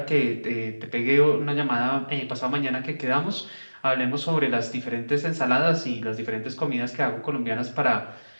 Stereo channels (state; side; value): inverted; both; correlation -1.00